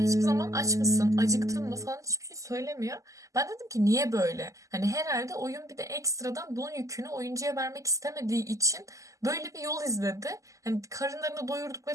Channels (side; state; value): left; late; 0.16 ms